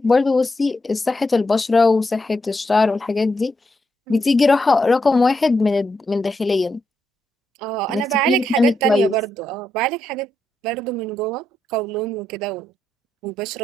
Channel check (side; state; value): both; normal; correlation 0.82